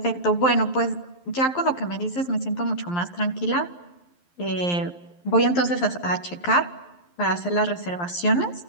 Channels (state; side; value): late; right; 11 ms